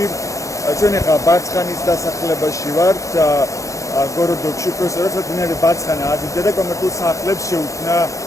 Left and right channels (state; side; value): late; right; 0.15 ms